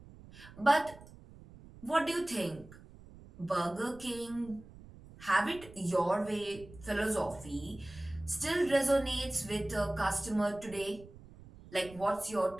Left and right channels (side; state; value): right; noise; rumble, 19 dB below the sound